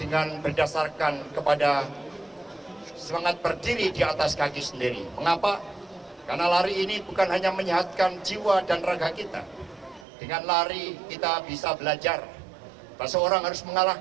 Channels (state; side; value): drops out; left; at 10.1 s